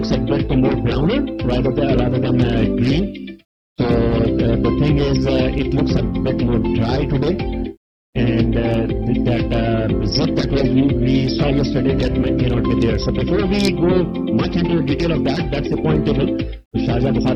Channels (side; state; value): both; identical; correlation 1.00